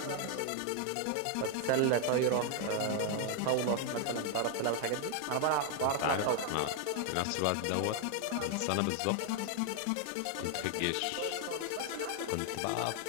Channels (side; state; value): both; different; correlation 0.00